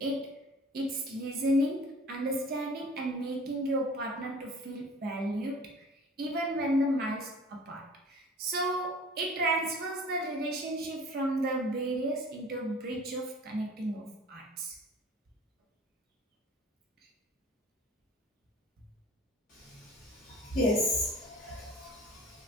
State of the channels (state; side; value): normal; both; correlation 0.46